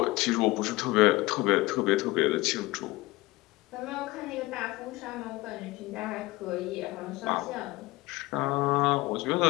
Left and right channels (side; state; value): right; quieter; 20.1 dB